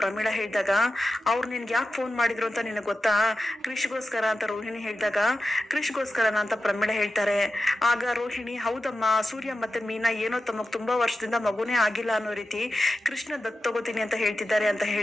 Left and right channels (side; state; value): both; normal; correlation 0.91